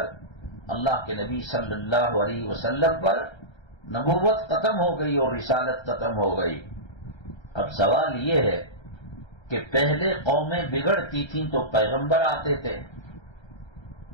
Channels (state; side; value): late; right; 1.3 ms